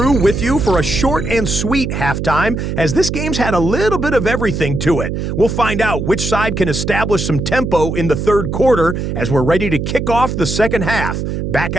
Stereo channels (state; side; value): noise; right; hum, 3 dB below the sound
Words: with you for a short and sweet halftime, as this game's had a little bit of everything to it. We'll find out which side can establish some tempo in the 3rd quarter as we're ready to kick off the 2nd half. Back